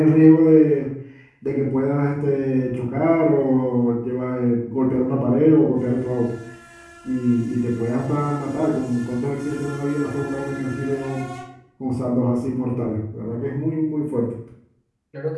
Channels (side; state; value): both; identical; correlation 1.00